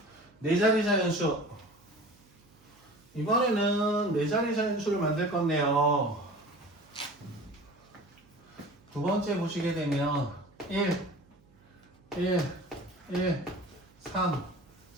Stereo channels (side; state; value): right; noise; hum, 29 dB below the sound